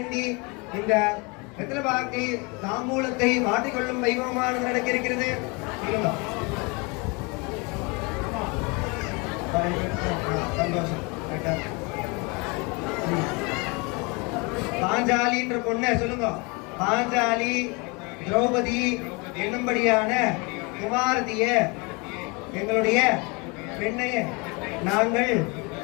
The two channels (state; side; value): quieter; right; 29.1 dB